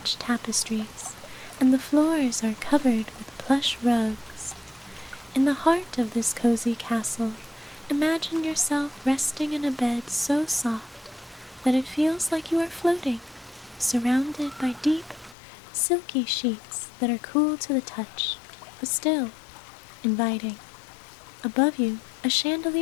tapestries, and the floors are covered with plush rugs. In the heart of this cozy castle, imagine yourself resting in a bed so soft that it feels like you are floating, surrounded by deep, silky sheets that are cool to the touch, but still inviting. Above you, a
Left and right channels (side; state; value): right; drops out; at 15.4 s